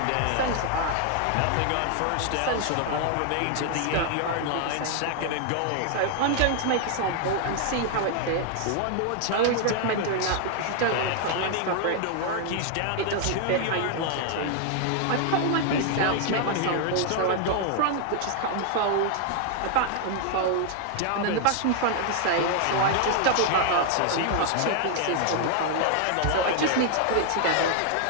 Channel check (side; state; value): both; different; correlation 0.00